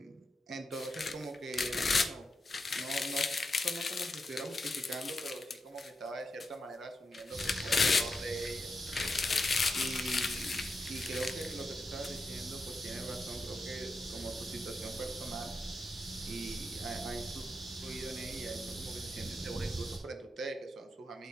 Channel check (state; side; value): normal; both; correlation 0.86